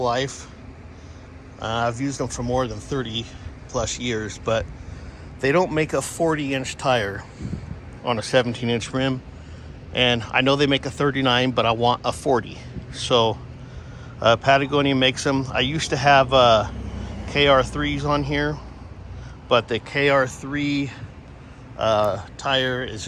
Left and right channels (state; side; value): identical; both; correlation 1.00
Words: life. I've used them for more than 30 plus years, but they don't make a 40-inch tire on a 17-inch rim. And I know they make a 39, but I want a 40. So Patagonia makes them. I used to have KR3s on here, but the KR3 tire is